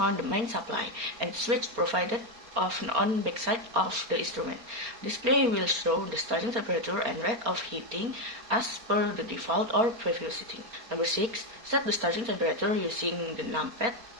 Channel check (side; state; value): left; late; 4.3 ms